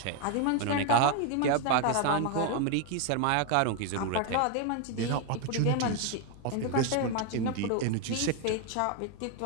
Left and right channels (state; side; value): different; both; correlation 0.01